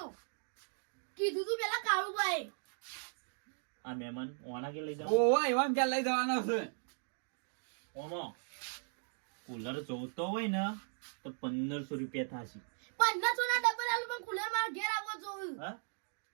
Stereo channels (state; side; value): silent; left; digital silence